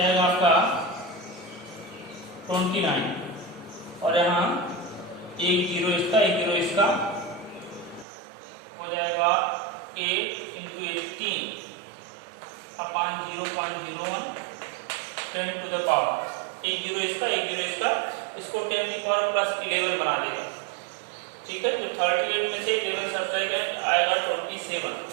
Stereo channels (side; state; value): left; drops out; at 8.1 s